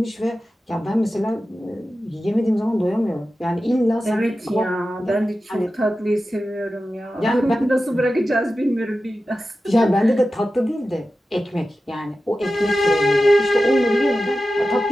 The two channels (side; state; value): both; normal; correlation 0.93